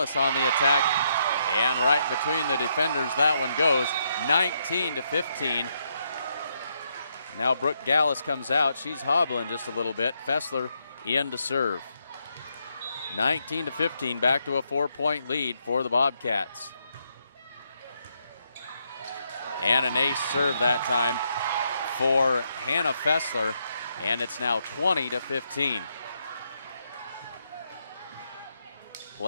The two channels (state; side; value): inverted; both; correlation -0.77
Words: on the attack, and right between the defenders that one goes. 19-15. Now Brooke Gallus comes out. She's hobbling just a little bit. Fessler in to serve. 19-15, back to a 4-point lead for the Bobcats. And an ace serve that time for Hannah Fessler, and it's now 20-15.